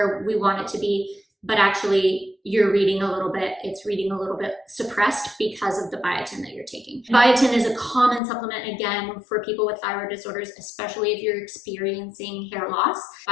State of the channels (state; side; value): drops out; right; at 8.2 s